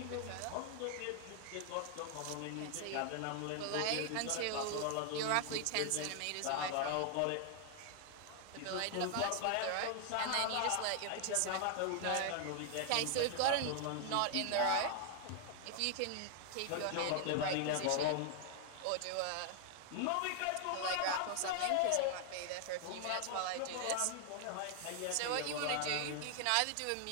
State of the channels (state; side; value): different; both; correlation 0.00